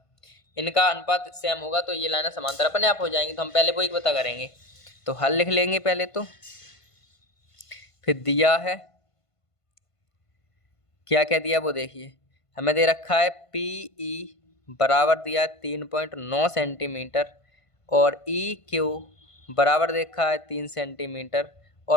इनका अनुपात सेम होगा तो ये लाइन समांतर अपने आप हो जाएंगी। तो हम पहले वो एक पता करेंगे, तो हल लिख लेंगे पहले तो, फिर दिया है क्या क्या दिया वो देखिए। हमें दे रखा है पी ई बराबर दिया है 3.9 सेंटीमीटर, और ई क्यू बराबर दे रखा है 3 सेंटीमीटर,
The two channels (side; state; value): right; late; 1.5 ms